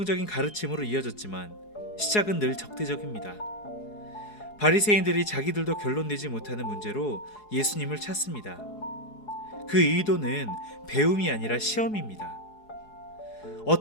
가르침으로 이어졌지만 시작은 늘 적대적입니다. 바리새인들이 자기들도 결론 내지 못하는 문제로 예수님을 찾습니다. 그 의도는 배움이 아니라 시험입니다.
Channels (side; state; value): right; late; 4.7 ms